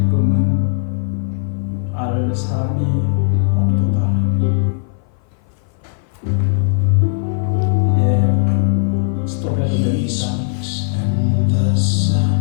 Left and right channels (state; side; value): silent; right; 57 dB below the other